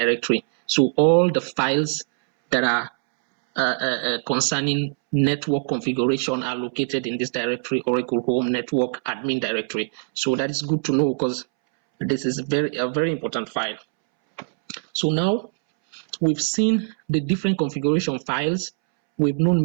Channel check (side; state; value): left; silent; 64 dB below the other